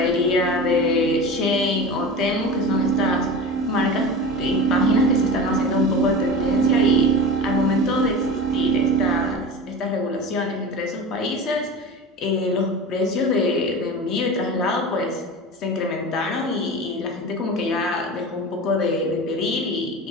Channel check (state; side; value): normal; both; correlation 0.31